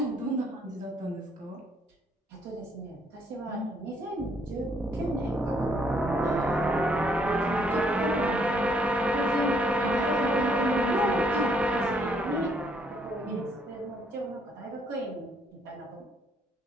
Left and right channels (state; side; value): normal; both; correlation 0.69